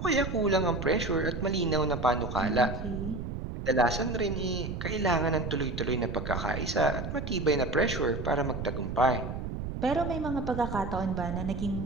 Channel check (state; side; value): noise; right; rumble, 5 dB below the sound